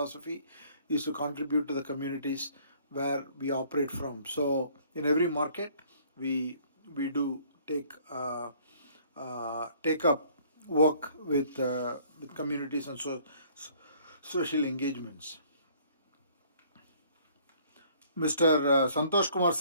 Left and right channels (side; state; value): both; inverted; correlation -0.59